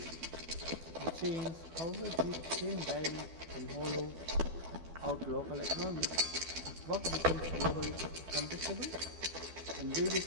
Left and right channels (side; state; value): left; late; 12 ms